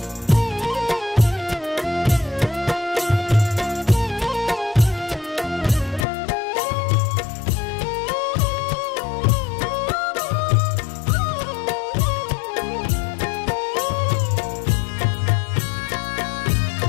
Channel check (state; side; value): drops out; right; at 6.1 s